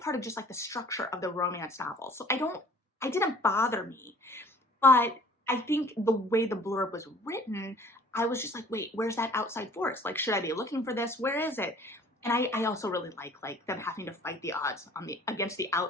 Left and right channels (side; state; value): both; normal; correlation 0.52